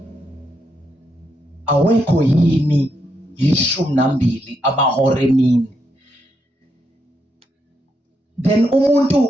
awekho yini 12 amahora emini? Then umuntu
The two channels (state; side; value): normal; both; correlation 0.80